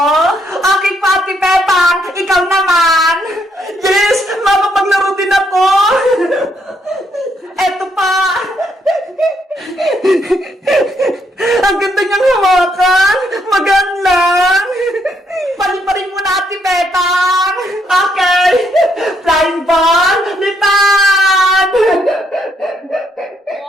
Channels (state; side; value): normal; both; correlation 0.73